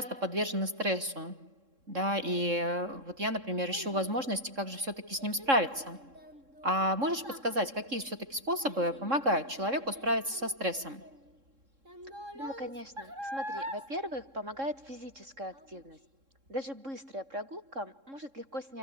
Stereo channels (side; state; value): left; late; 3.7 ms